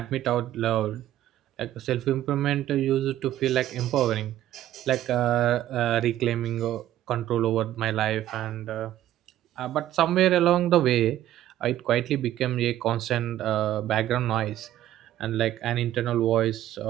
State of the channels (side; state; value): left; quieter; 13.0 dB